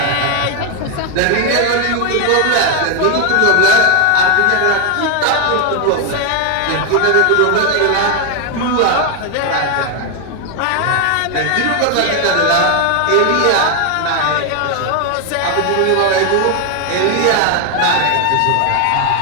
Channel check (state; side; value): different; both; correlation 0.01